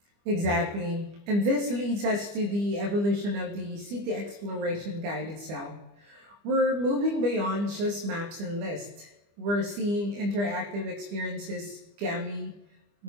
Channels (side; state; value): left; late; 25 ms